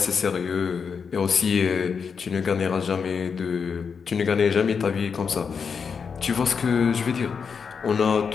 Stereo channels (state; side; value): quieter; right; 6.0 dB